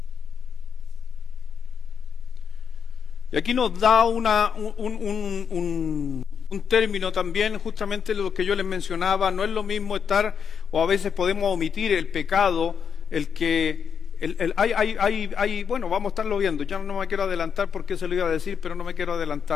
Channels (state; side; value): quieter; right; 7.1 dB